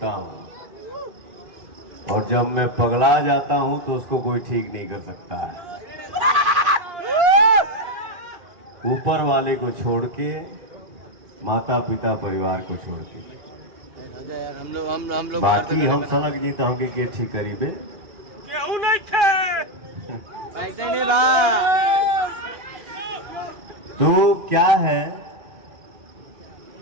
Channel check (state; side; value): late; left; 2.4 ms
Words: हूँ, और जब मैं पगला जाता हूँ तो उसको कोई ठीक नहीं कर सकता है। ऊपर वाले को छोड़ के, माता पिता परिवार को छोड़ के, हम लोग बाकी हम सनक जी तो हमके के ठीक करीबे केहू नहीं थे। तो क्या है,